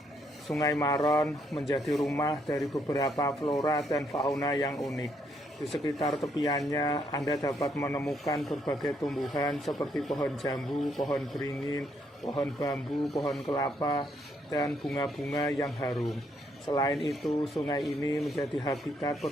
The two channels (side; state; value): both; normal; correlation 0.73